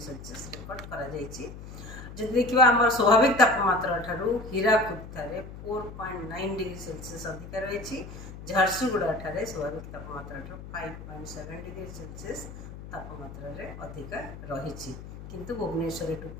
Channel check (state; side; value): noise; left; hum, 13 dB below the sound